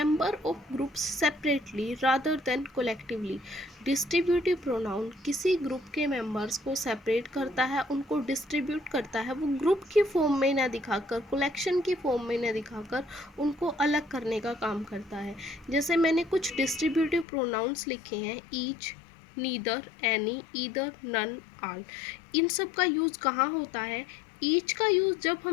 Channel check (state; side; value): drops out; right; at 17.2 s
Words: of groups separately rather than collectively. Distributive pronoun किसी ग्रुप के मेंबर्स को सेपरेट करता है, उनको डिस्ट्रीब्यूट करता है। वो ग्रुप की फॉर्म में न दिखाकर, कलेक्शन की फॉर्म में न दिखाकर उनको अलग करने का काम करता है। जैसे मैंने कुछ डिस्ट्रीब्यूटिव प्रोनाउंस लिखे हैं, each, neither, any, either, none, all. इन सब का यूज़ कहाँ होता है? ईच का यूज़ जब